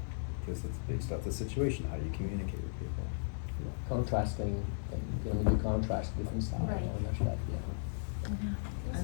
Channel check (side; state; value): right; silent; digital silence